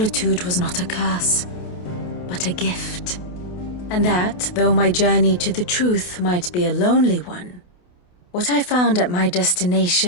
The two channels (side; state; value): right; late; 28 ms